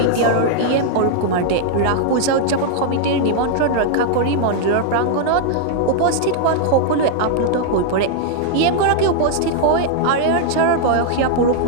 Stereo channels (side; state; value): both; different; correlation -0.01